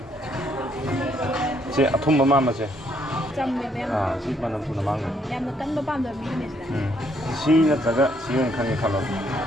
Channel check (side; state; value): both; normal; correlation 0.70